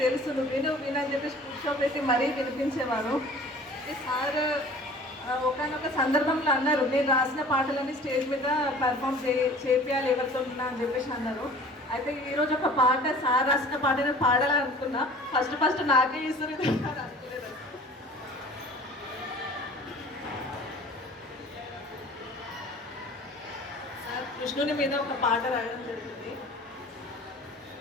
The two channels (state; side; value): normal; both; correlation 0.46